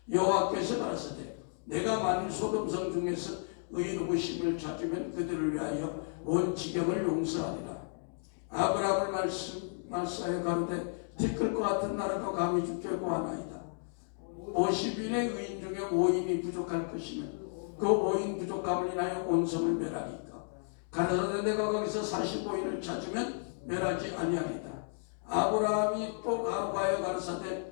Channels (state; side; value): silent; right; digital silence